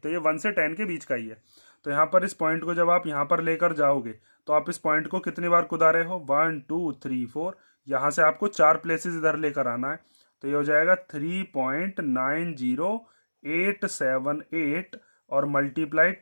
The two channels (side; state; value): both; inverted; correlation -1.00